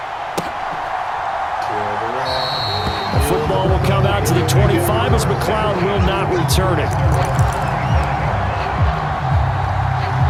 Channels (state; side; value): identical; both; correlation 1.00